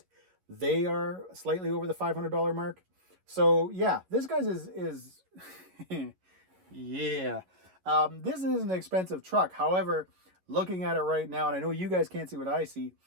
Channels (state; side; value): late; left; 11 ms